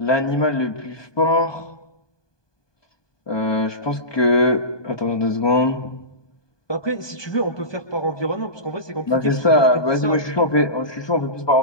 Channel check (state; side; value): late; right; 1.2 ms